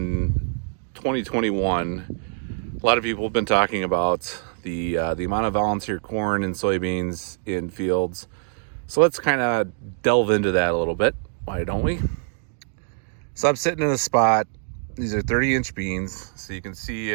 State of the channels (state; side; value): silent; left; 62 dB below the other